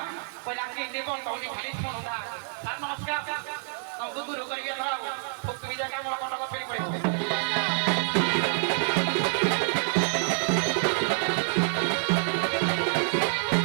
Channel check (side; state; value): left; silent; digital silence